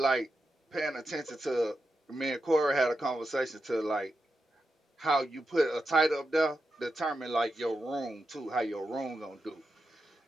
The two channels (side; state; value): both; normal; correlation 0.88